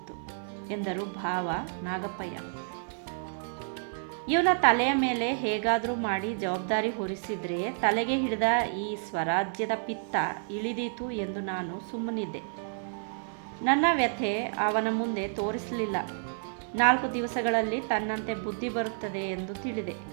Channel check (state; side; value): silent; left; digital silence